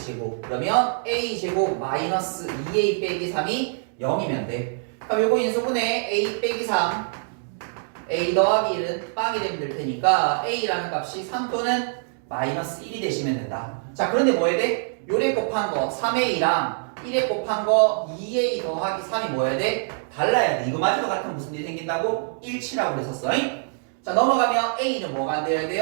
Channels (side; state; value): left; silent; digital silence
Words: 그러면 a 제곱 마이너스 2a 빼기 3이 0이면 돼. 그럼 요거 인수분해 a 빼기 3 a 더하기 1은 빵이 되면 될 테니까 a라는 값이 3 또는 마이너스 1이 되시면 된다. 자, 그런데 뭐 해야 돼? 요래 곱한 거 3a랑 1에 곱한 거 2a 더하기 3이 뭐 해야 돼? 달라야 돼. 이거마저도 같으면 무슨 일이 생긴다고? 일치라고 그랬었어. 자, 넘어가면 a는 뭐가 안 돼야